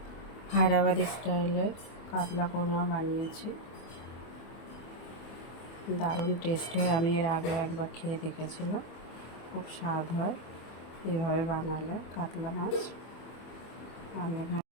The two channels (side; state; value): right; late; 24 ms